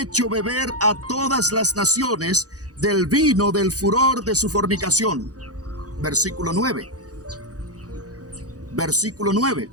beber a todas las naciones del vino del furor de su fornicación. Versículo 9. Versículo 9.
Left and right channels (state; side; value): late; left; 0.67 ms